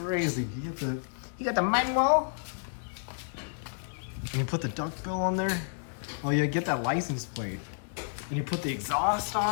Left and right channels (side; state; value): right; silent; 57 dB below the other